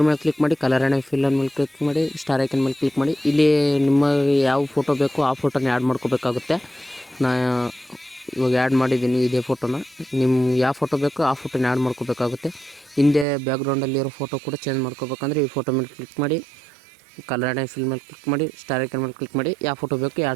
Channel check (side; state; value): left; drops out; at 13.2 s